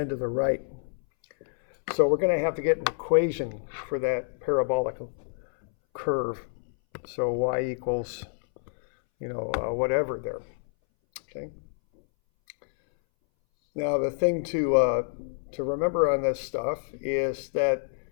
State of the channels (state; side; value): silent; right; 60 dB below the other